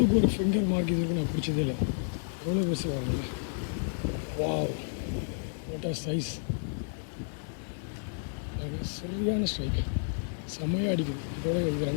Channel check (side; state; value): right; silent; 57 dB below the other